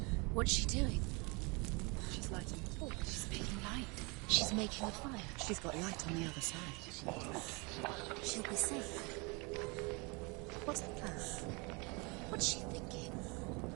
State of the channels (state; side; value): quieter; left; 29.6 dB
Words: What's she doing? She's lighting the torch. She's making light. She's making a fire. She's got light on the other side. She'll be safe. What's the plan? What's she thinking?